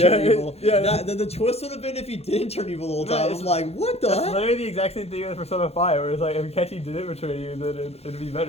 Yeah, evil. yeah. The twist would have been if he didn't turn evil the whole No, time. it's- I'm like, what the That's heck? literally the exact same thing as Persona 5, where it's like if Kechi didn't betray you, then it'd be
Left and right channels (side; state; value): right; late; 0.30 ms